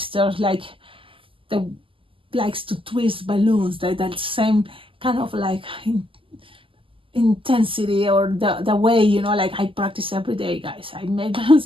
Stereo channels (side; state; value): left; late; 0.25 ms